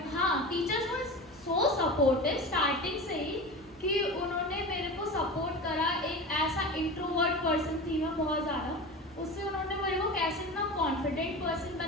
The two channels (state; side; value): normal; both; correlation 0.30